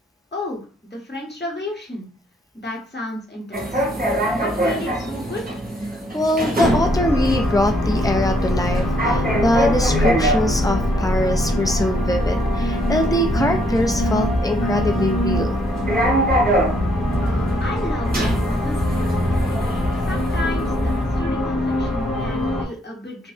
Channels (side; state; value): both; normal; correlation 0.70